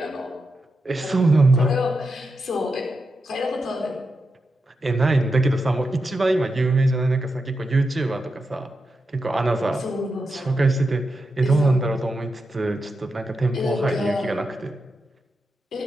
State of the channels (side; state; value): both; normal; correlation 0.87